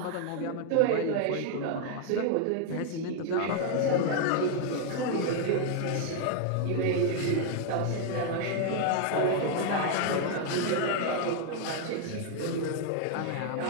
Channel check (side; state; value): both; different; correlation 0.00